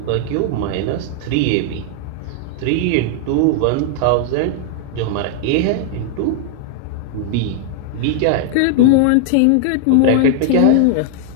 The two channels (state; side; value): different; both; correlation 0.00